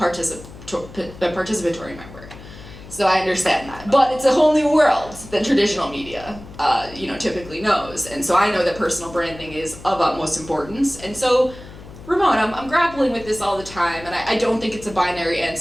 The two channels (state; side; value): noise; left; hum, 17 dB below the sound